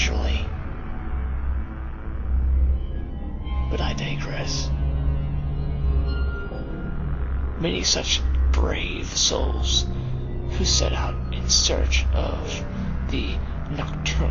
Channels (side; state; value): both; identical; correlation 1.00